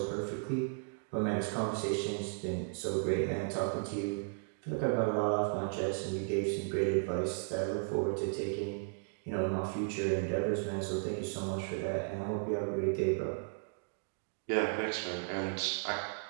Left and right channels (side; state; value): left; silent; digital silence